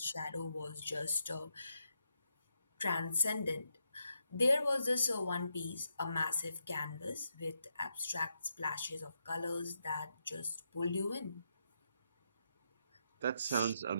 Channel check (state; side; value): inverted; both; correlation -0.82